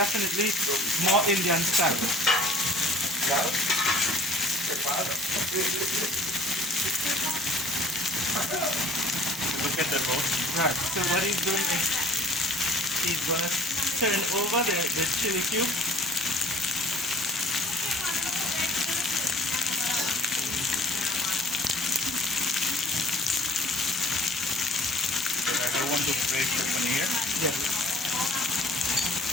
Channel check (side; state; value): both; normal; correlation 0.50